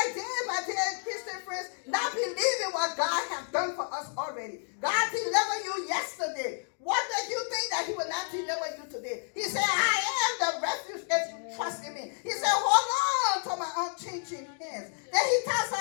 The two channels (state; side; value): silent; right; 58 dB below the other